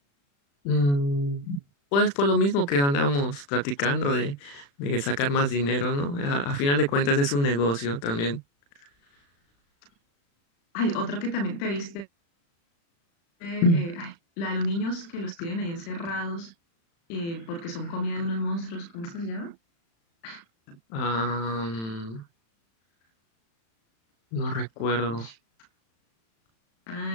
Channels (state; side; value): late; right; 35 ms